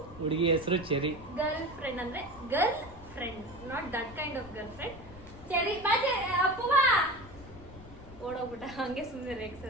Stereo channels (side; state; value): left; noise; rumble, 17 dB below the sound